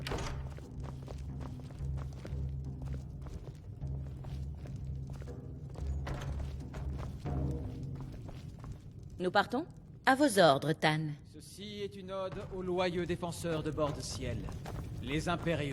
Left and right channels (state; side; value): identical; both; correlation 1.00